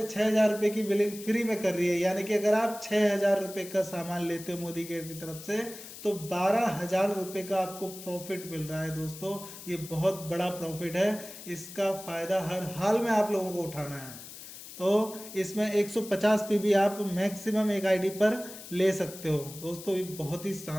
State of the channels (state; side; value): noise; left; hiss, 14 dB below the sound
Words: 6 हज़ार रुपये की बिलिंग फ्री में कर रही है, यानी कि अगर आप 6 हज़ार रुपये का सामान लेते हो मोदी केयर की तरफ से तो 12 हज़ार रुपये का आपको प्रॉफिट मिल रहा है। दोस्तों ये बहुत बड़ा प्रॉफिट है, इसका फ़ायदा हर हाल में आप लोगों को उठाना है। तो इसमें 150 पीवी आप मैक्सिमम एक आईडी पर ले सकते हो। दोस्तों ये बहुत ही